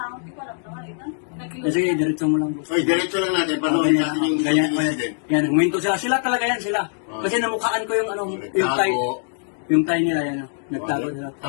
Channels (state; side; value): silent; right; digital silence